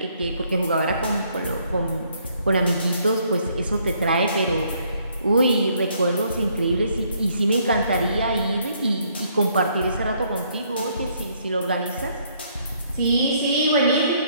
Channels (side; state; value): both; inverted; correlation -0.68